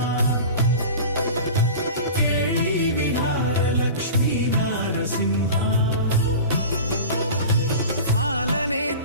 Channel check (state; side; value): inverted; both; correlation -0.34